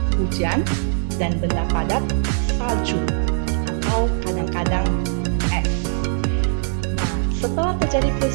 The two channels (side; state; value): left; silent; digital silence